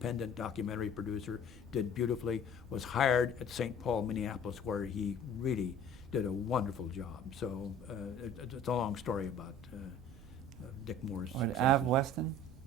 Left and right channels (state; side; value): normal; both; correlation 0.47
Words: documentary producer, did beautifully, was hired at St. Paul, Minneapolis, where he really did a wonderful job. So it's a long story about Dick Moore's All right, successes. Av Weston.